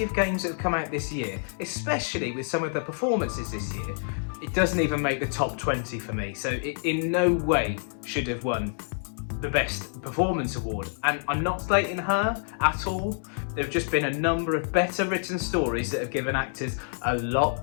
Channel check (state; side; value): silent; right; 60 dB below the other